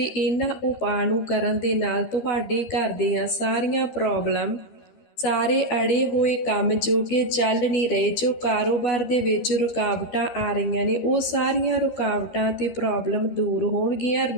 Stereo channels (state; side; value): late; right; 12 ms